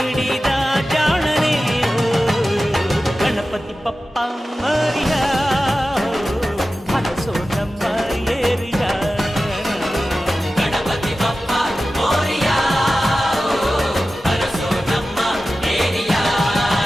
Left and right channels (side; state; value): both; normal; correlation 0.94